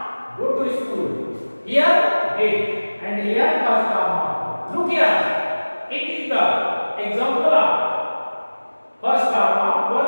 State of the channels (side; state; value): both; inverted; correlation -1.00